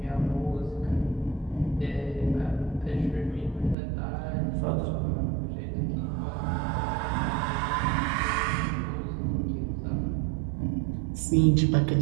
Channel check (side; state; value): left; drops out; at 3.8 s